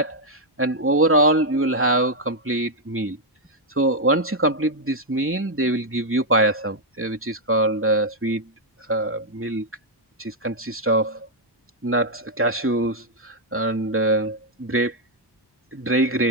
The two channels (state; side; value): normal; both; correlation -0.02